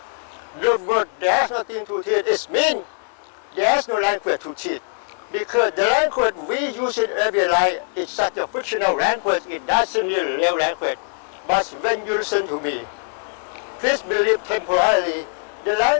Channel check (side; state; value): right; silent; digital silence